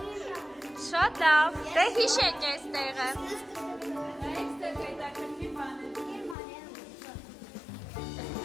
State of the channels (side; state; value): right; drops out; at 6.4 s